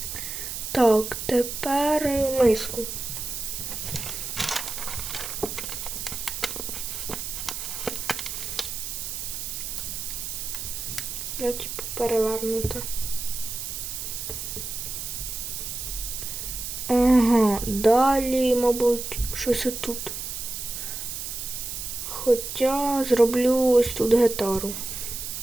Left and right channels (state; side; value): noise; right; hiss, 6 dB below the sound